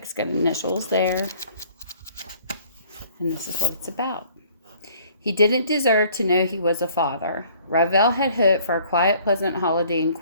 It's got initials there. And this is what it's about. He didn't deserve to know he was a father. Weale had hoped for a quiet, pleasant holiday in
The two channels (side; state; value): both; inverted; correlation -0.56